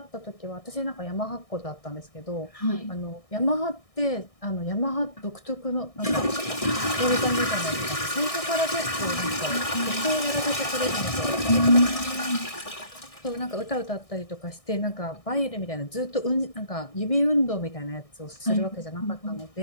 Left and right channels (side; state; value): right; late; 1.6 ms